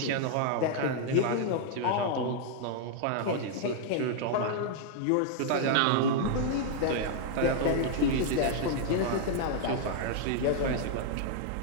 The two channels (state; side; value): different; both; correlation -0.01